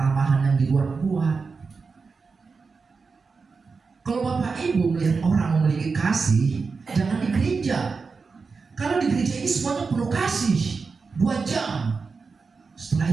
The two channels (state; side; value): quieter; left; 4.7 dB